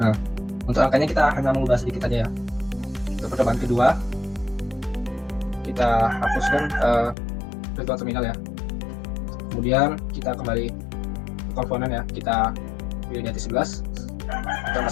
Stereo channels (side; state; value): right; drops out; at 7.2 s